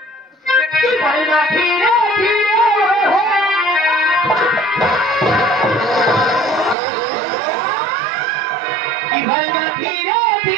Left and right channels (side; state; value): left; drops out; at 6.8 s